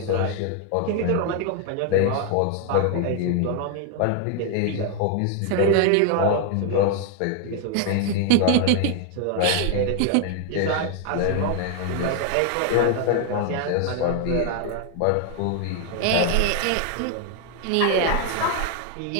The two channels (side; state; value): both; different; correlation 0.00